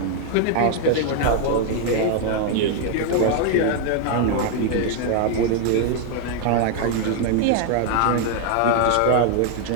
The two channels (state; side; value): different; both; correlation 0.00